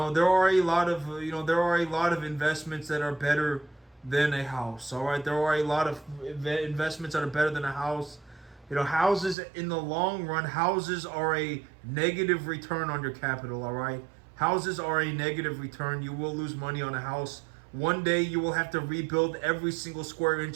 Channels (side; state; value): left; drops out; at 9.3 s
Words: a lot of investments that are better than a house. All right, there are a lot of investments that are better than a house. Houses in the long run, houses are a negative return on your capital, all right? Houses are a negative return. You will lose money on a house. One day you will have to rebuild every single square